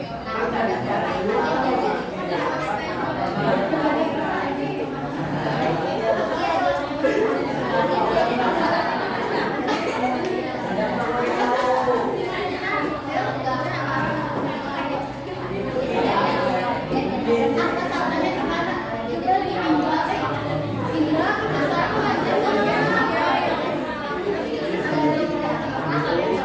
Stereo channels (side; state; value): both; identical; correlation 1.00